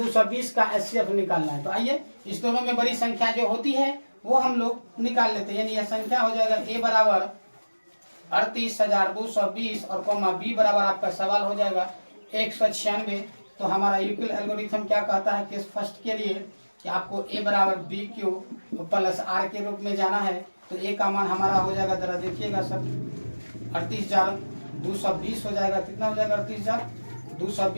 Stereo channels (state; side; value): inverted; both; correlation -1.00